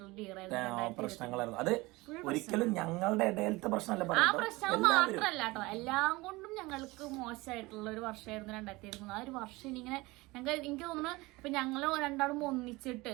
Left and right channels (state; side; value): quieter; left; 22.0 dB